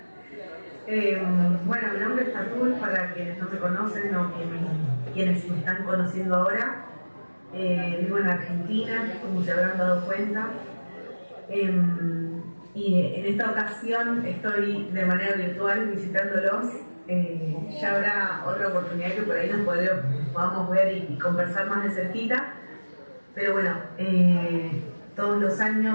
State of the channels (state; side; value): inverted; both; correlation -1.00